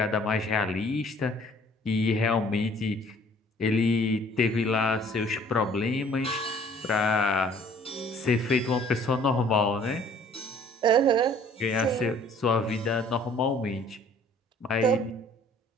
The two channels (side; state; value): both; normal; correlation 0.55